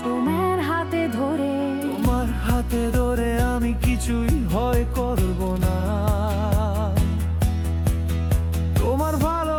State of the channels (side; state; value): both; identical; correlation 1.00